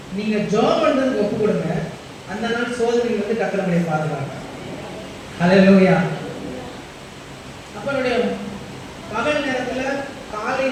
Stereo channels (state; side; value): identical; both; correlation 1.00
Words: நீங்கள் ஜாப் பண்ணுறதுக்கு ஒப்பு கொடுங்க. அந்த நாள் சோதனைகள் வந்து கத்தரமுடைய பாதுகாங்க. அல்லேலூயா. அப்போ என்னுடைய பகல் நேரத்தில், காலை